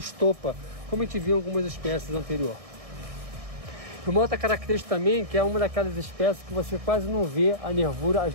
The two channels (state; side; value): late; left; 1.6 ms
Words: como a gente viu em algumas espécies anteriores. Uma outra característica também, que é uma daquelas espécies que você quase não vê as